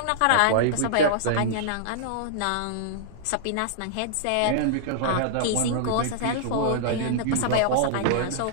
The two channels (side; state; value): both; different; correlation -0.02